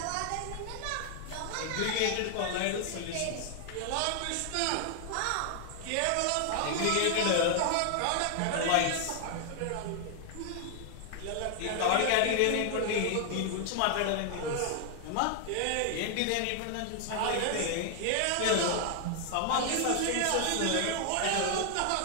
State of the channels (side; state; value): both; different; correlation 0.00